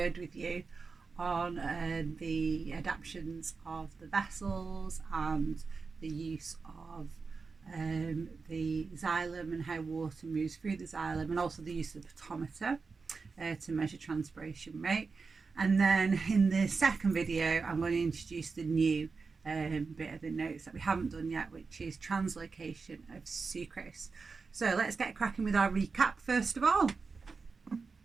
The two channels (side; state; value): left; quieter; 4.6 dB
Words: with you on the adaptations of the vessels and the use of the xylem and how water moves through the xylem, and also the use of the potometer to measure transpiration rate. And then in the second video, I'm going to introduce the new bit of the notes that we haven't done yet, which is translocation of sucrose. So let's get cracking with our recap first of all.